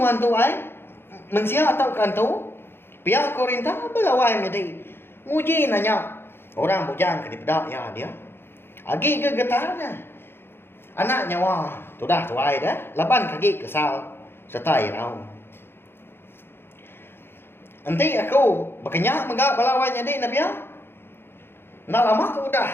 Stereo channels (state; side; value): late; right; 0.11 ms